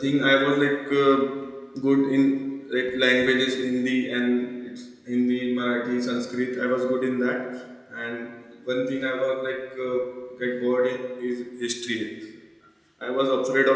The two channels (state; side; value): identical; both; correlation 1.00